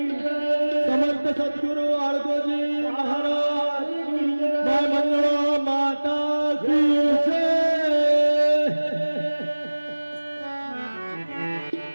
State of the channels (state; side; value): inverted; both; correlation -1.00